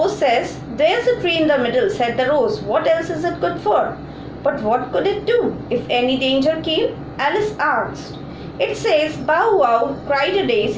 says, there's a tree in the middle, said the rose. What else is it good for? But what could it do if any danger came? Alice asked. It says, bow wow, cried a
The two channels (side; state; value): both; identical; correlation 1.00